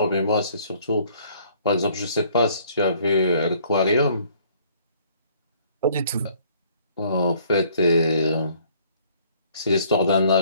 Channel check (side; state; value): both; inverted; correlation -0.60